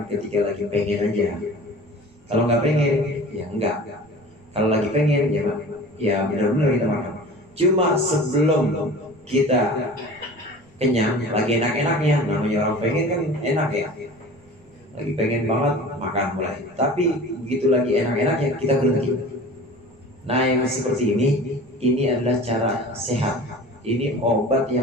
ketika lagi pengen aja. Kalau nggak pengen, ya enggak. Kalau lagi pengen, ya benar-benar kita makan. Cuma sebelum kita kenyang, lagi enak-enaknya, namanya orang pengen kan enak ya. Lagi pengen banget, makan mulai. Tapi begitu lagi enak-enaknya, kita berhenti. Nah yang seperti ini adalah cara sehat. Ini obat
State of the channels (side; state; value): right; noise; rumble, 29 dB below the sound